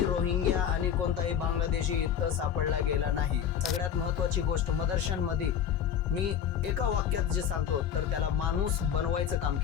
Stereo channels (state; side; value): quieter; right; 8.8 dB